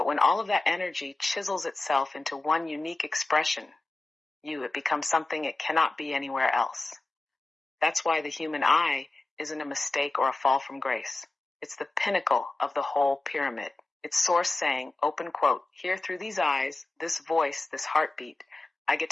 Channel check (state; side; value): quieter; right; 3.1 dB